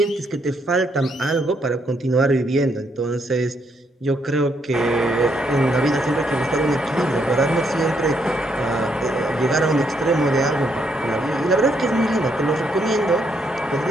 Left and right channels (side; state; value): both; normal; correlation 0.74